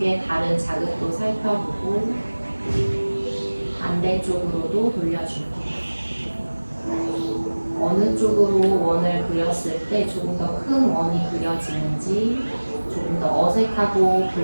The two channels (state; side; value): inverted; both; correlation -1.00